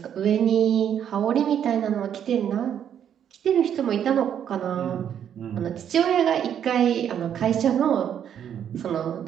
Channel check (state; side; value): quieter; left; 9.2 dB